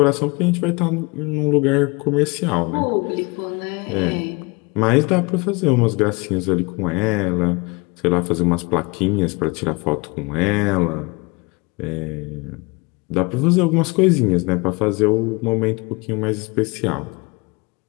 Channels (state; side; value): quieter; right; 27.3 dB